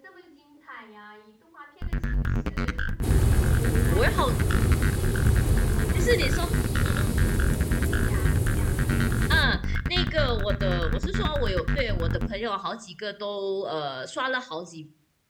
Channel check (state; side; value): identical; both; correlation 1.00